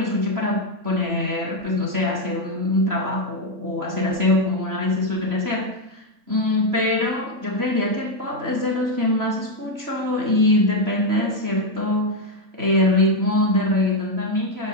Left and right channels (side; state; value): left; late; 3.0 ms